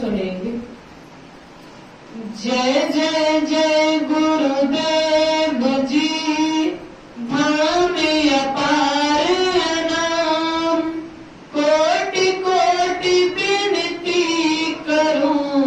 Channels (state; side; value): identical; both; correlation 1.00